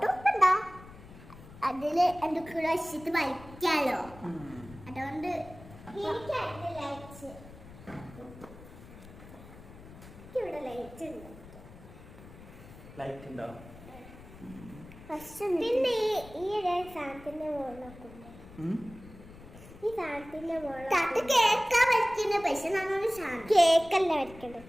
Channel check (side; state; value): left; noise; rumble, 18 dB below the sound